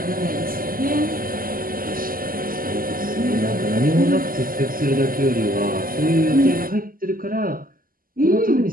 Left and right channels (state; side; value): late; left; 0.41 ms